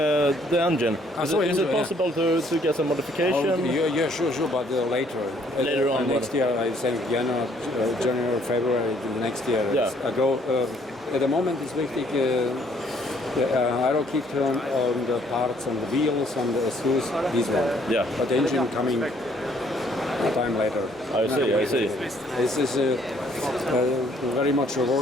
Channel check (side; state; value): both; normal; correlation 0.64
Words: The engine. Is engine, it possible to get some modification? Yeah, sure, but later. Later on. Next year, I think January, February next year. Yeah. I go. At the moment, it's wichtig. The aero kit on the parts and the wheels and the exhaust. This one. Yeah. But the engine coming a time later. I see. This is very much